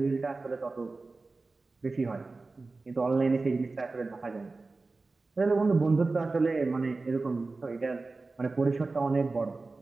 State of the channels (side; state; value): left; quieter; 3.6 dB